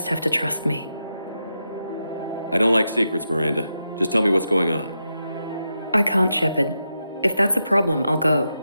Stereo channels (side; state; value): both; inverted; correlation -0.86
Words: have to trust me. I don't like secrets, Miranda. Just tell me what's going on. I can't, Shepard. If that's a problem, I'll go.